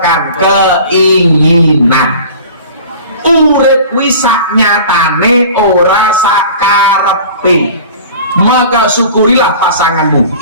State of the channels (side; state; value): both; inverted; correlation -0.42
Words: keinginan. Urip kuwi sak nyatane ora sak karepe. Maka syukurilah pasanganmu.